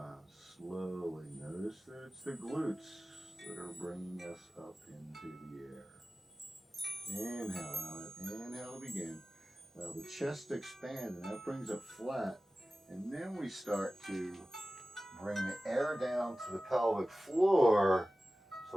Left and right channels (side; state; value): both; normal; correlation 0.96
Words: Slowly. Notice that it's the glutes that are bringing us up into the air. Inhale out. Inhale to begin. Now the chest expands and that brings it flat. And then we start to bring the air down to the pelvic floor